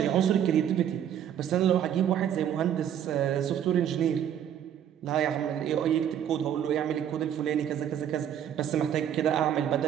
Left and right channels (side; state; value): left; quieter; 9.8 dB